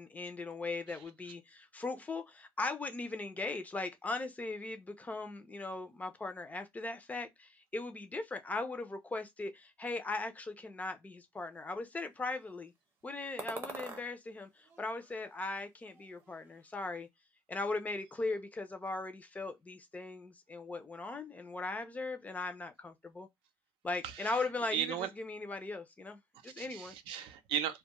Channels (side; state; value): both; normal; correlation 0.65